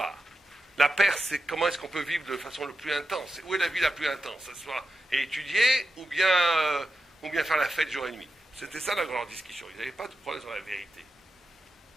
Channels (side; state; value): both; normal; correlation 0.90